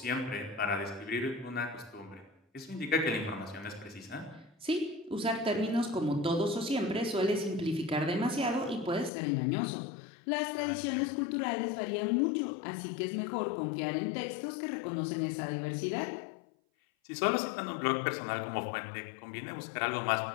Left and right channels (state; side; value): drops out; right; at 9.1 s